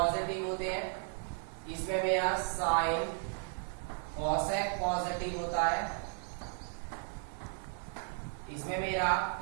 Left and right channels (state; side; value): silent; left; 54 dB below the other